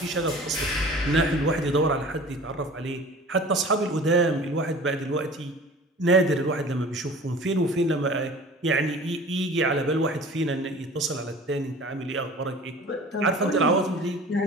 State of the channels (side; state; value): both; normal; correlation 0.43